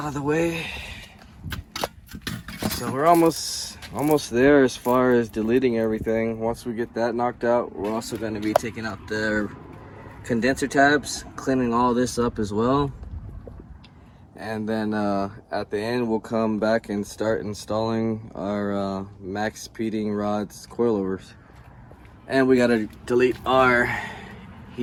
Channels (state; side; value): identical; both; correlation 1.00